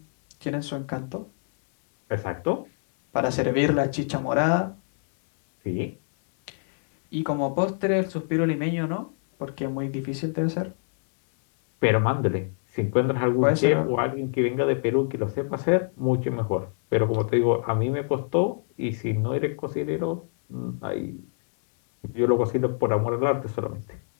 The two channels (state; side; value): silent; right; 62 dB below the other